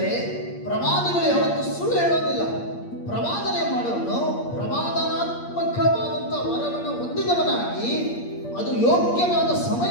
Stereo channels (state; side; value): late; right; 8.6 ms